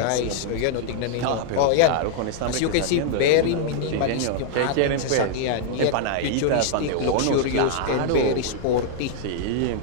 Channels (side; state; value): both; different; correlation -0.01